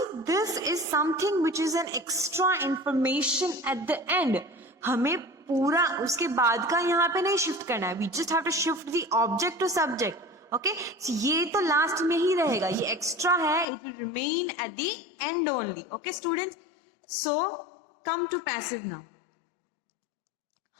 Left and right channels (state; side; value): drops out; right; at 13.7 s